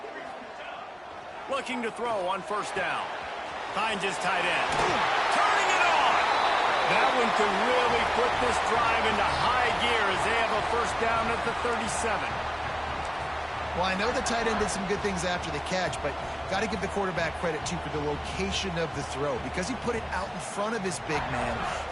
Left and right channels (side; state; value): both; identical; correlation 1.00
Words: Looking to throw on first down. Finds his tight end. Turning it on! That one could really put this drive into high gear as they have a first down at the 37. Well, I know the tight end did some good things after the catch, but got to give the quarterback credit, too, for the location of the throw. Because he put it out in front of his big man,